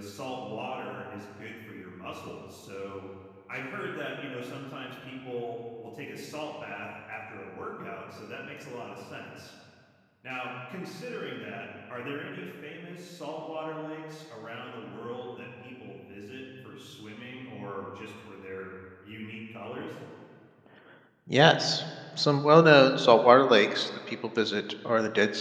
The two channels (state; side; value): identical; both; correlation 1.00